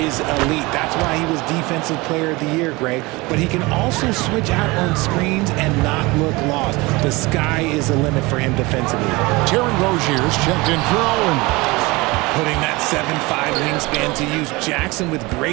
elite. That's why he was Defensive Player of the Year, Greg. But he can also switch out on screens and not look lost. The sky is the limit for him defensively. Terry Rozier's checked in for Owen. Putting that 7'5" wingspan to use. Jackson with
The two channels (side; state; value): left; quieter; 23.3 dB